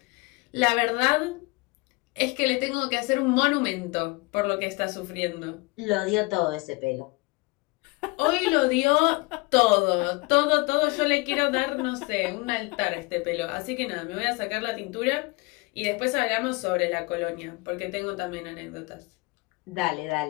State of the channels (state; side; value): quieter; right; 26.2 dB